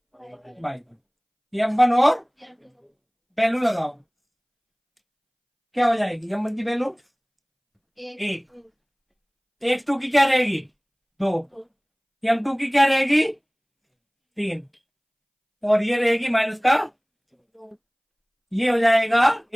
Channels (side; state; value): both; identical; correlation 1.00